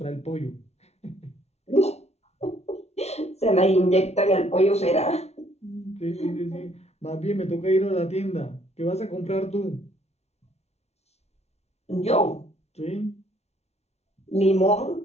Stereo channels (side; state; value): right; late; 0.31 ms